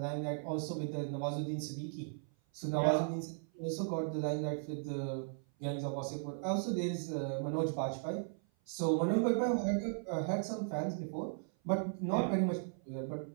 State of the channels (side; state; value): left; silent; 53 dB below the other